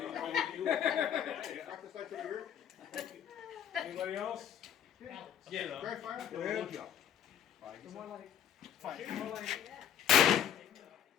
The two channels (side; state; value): right; quieter; 9.5 dB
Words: Anybody else? Yeah. Dry fire? Go ahead.